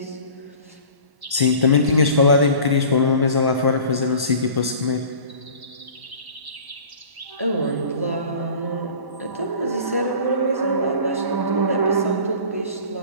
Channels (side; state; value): left; late; 1.1 ms